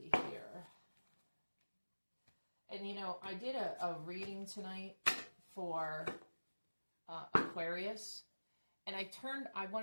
here. And, you know, I did a reading tonight for Aquarius. And I turned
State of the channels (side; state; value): both; inverted; correlation -1.00